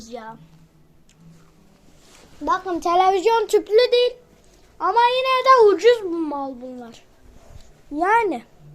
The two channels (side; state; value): both; identical; correlation 1.00